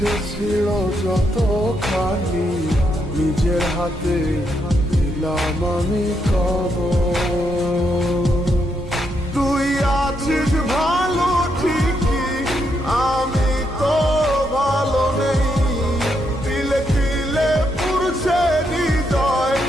ছিল যতখানি, নিজের হাতে দিলাম আমি খবর। তুই আছিস ভালো ঠিকই, আমি তো ভালো নেই। তিলে তিলে পুরছে হৃদয়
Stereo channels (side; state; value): both; normal; correlation 0.79